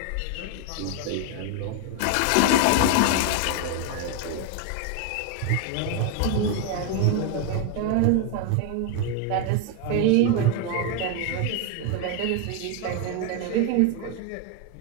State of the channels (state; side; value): different; both; correlation 0.01